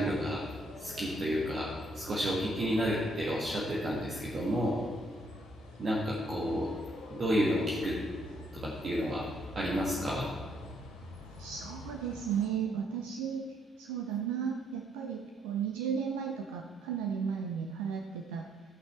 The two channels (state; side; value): normal; both; correlation 0.71